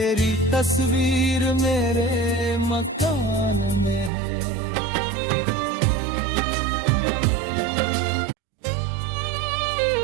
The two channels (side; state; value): left; drops out; at 4.1 s